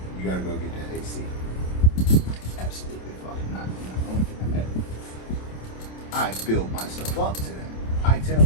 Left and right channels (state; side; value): late; right; 27 ms